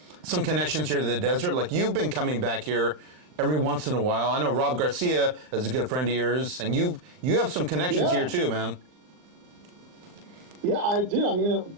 some connections here to the desert. Like you've been coming back here every once in a while. I know Rob Garcia is a good friend of yours, and you have some connections Yeah. here too, man. Yeah, I do. I mean,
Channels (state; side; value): late; left; 39 ms